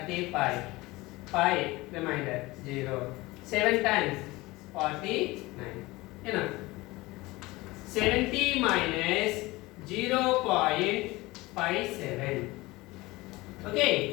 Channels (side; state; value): right; quieter; 20.9 dB